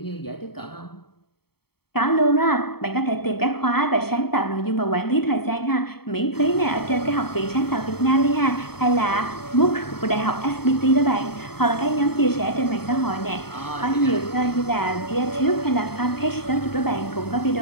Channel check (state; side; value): late; right; 0.96 ms